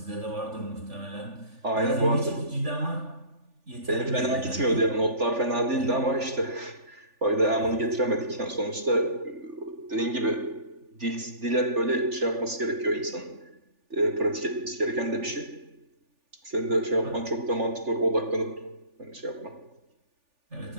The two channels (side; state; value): left; late; 3.4 ms